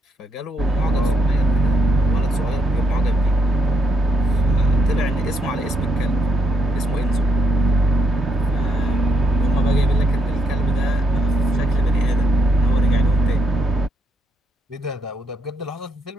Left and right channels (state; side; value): normal; both; correlation 0.76